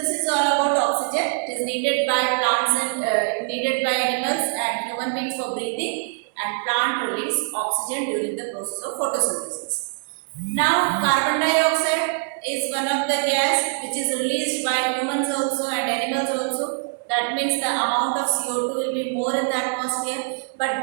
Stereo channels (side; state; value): left; silent; 63 dB below the other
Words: is all about oxygen. It is needed by plants and needed by animals and human beings for breathing, and plant release oxygen during the process of photosynthesis. Now, carbon dioxide is one of the gas which is released by humans also and animals also. That means the amount of CO2 will be more in the atmosphere. But